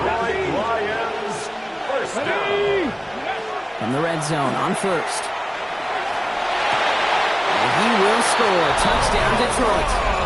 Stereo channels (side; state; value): both; identical; correlation 1.00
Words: Lions first down. From the red zone on first. And he will score. Touchdown Detroit.